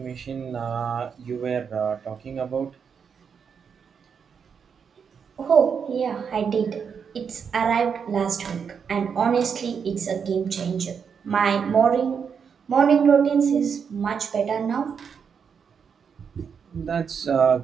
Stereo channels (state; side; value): quieter; left; 6.7 dB